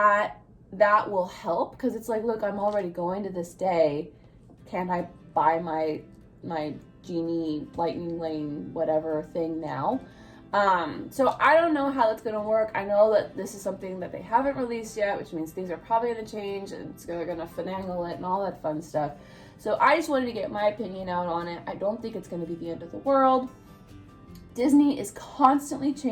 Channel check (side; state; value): both; identical; correlation 1.00